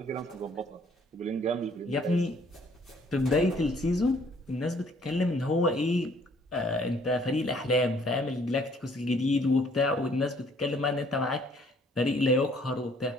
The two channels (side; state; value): both; normal; correlation 0.61